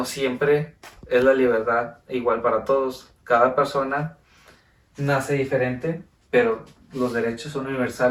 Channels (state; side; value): identical; both; correlation 1.00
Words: siempre es la libertad igual para todos. Cada persona nace diferente, pero los derechos son